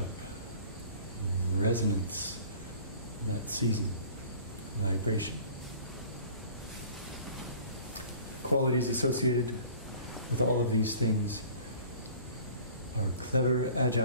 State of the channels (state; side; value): inverted; both; correlation -0.48